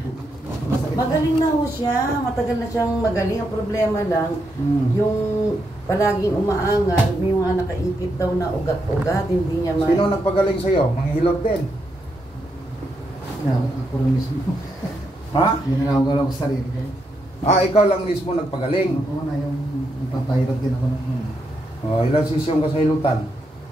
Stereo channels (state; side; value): normal; both; correlation 0.81